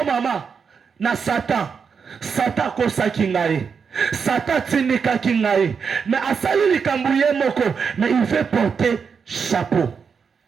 maman, na Satan. Satan kosa kingaye. Satan tinika kingaye. Mais asali likambouye moko. Mais il fait porter chapeau.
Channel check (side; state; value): left; quieter; 6.1 dB